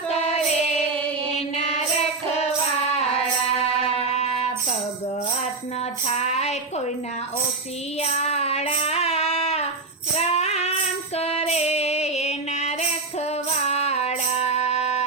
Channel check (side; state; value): left; quieter; 3.8 dB